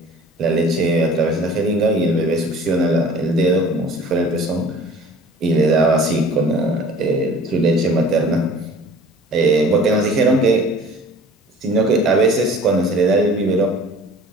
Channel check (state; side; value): normal; both; correlation 0.46